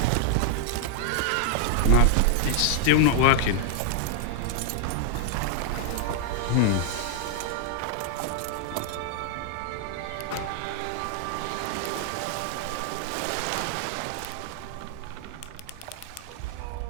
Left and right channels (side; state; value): both; different; correlation 0.00